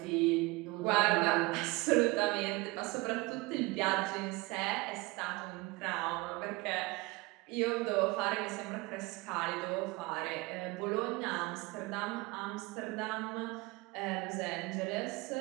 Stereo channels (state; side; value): quieter; left; 23.7 dB